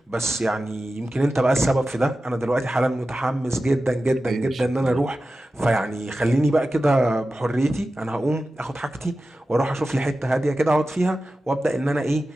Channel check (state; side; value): normal; both; correlation 0.94